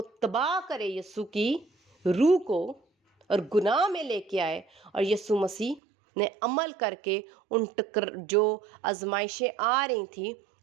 تباہ کرے یسوع کی روح کو اور گناہ میں لے کے آئے, اور یسوع مسیح نے عمل کر کے ان جو آزمائشیں آ رہی تھیں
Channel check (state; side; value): drops out; left; at 5.8 s